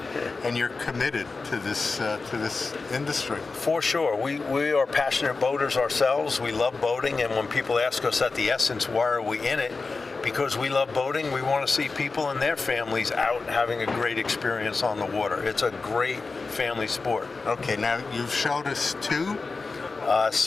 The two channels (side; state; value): right; quieter; 4.1 dB